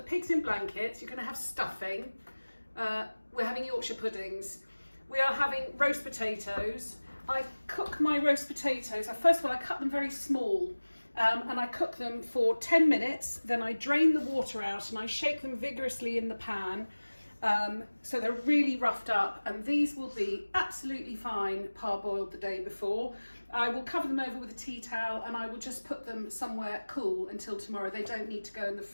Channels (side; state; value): both; inverted; correlation -1.00